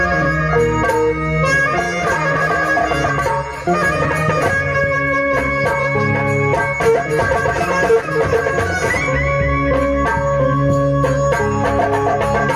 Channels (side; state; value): both; identical; correlation 1.00